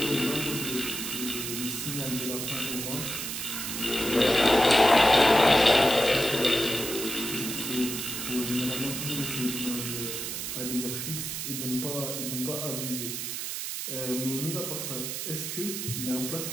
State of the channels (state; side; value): noise; right; hiss, 4 dB below the sound